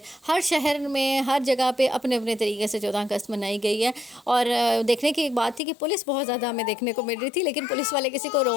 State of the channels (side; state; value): right; drops out; at 5.6 s